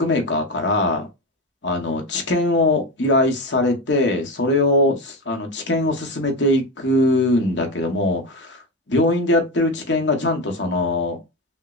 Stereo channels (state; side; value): normal; both; correlation 0.18